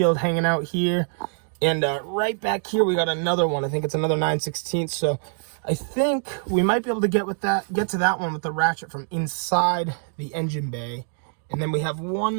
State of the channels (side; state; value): left; silent; digital silence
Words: hanging out here. And right back here we got another one. I think it's another 9/16. So I think we might be able to get to that one with the ratchet from inside the engine bay. And then we have one